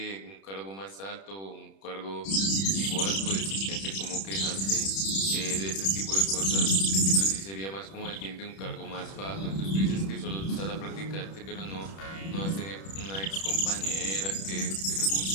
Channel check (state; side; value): late; right; 31 ms